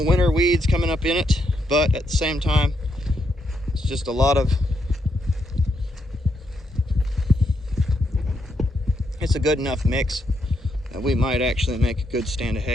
winter weeds coming up in it, but at the same time, it's just a lot of, it's a good enough mix that we might actually make a good stand of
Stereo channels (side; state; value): both; normal; correlation 0.79